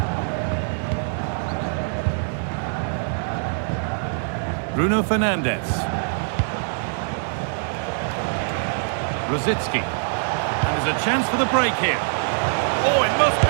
Bruno Fernandes. Rosicki. And there's a chance for the break here. Oh, it must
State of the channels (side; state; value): left; silent; digital silence